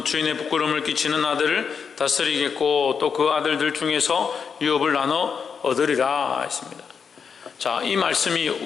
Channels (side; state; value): right; quieter; 6.3 dB